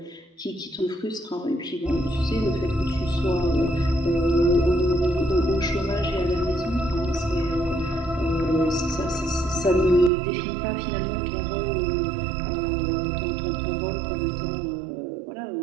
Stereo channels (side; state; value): left; drops out; at 10.1 s